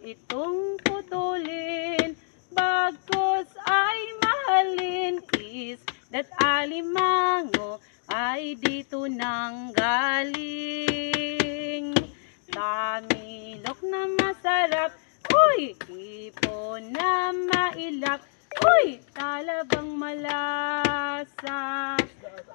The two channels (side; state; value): right; silent; digital silence